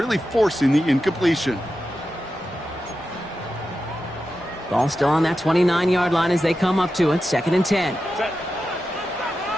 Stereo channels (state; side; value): normal; both; correlation 0.90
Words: forcing the incompletion. Ball still on that 29-yard line as they come up to it. 2nd and 10.